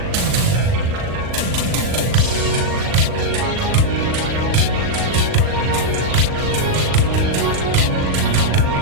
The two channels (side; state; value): left; late; 39 ms